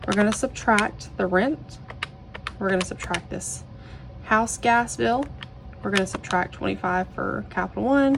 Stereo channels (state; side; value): identical; both; correlation 1.00